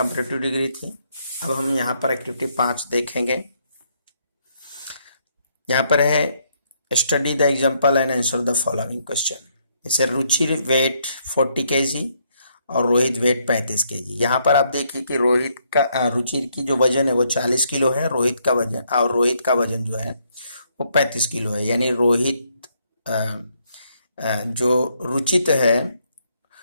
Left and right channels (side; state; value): both; inverted; correlation -0.73